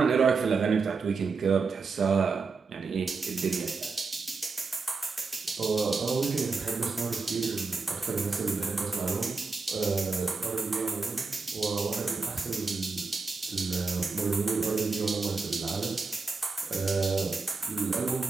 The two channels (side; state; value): left; quieter; 4.4 dB